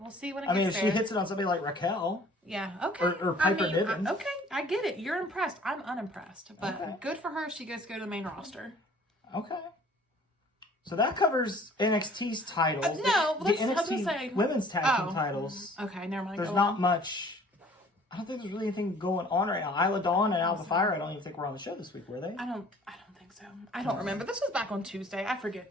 see when it gets there. I mean, if there. she hits it on somebody like Raquel. Yeah, okay. Or Piper Niven. Okay, I get it. You're impressed. I'm unimpressed. But good for her. She gets to go to the main roster. Okay. So that covers NXT's titles. No, the NXT women's tag team titles. Okay, never mind. There's not much. I don't think there's really anything going on right now. Isla Dawn and Alpha Fire, I don't even think were on the show this week, were they? I don't think so. I don't remember. This was back on Tuesday. I forget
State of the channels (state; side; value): normal; both; correlation 0.53